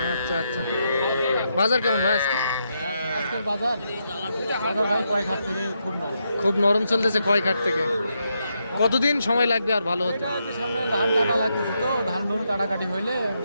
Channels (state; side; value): inverted; both; correlation -0.82